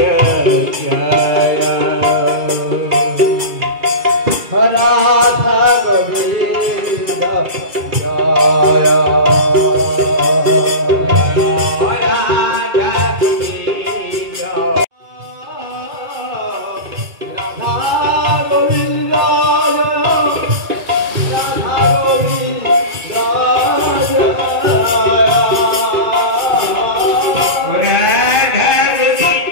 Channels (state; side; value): late; left; 2.3 ms